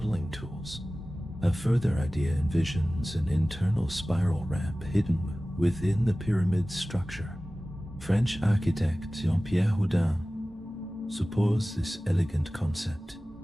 tools. A further idea envisions an internal spiral ramp hidden within the pyramid's structure. French architect Jean-Pierre Houdin supports this elegant concept.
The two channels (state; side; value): normal; both; correlation 0.97